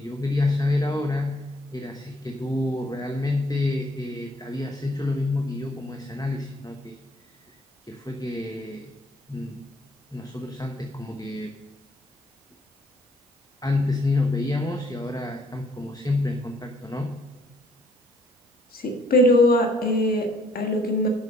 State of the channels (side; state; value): both; normal; correlation 0.64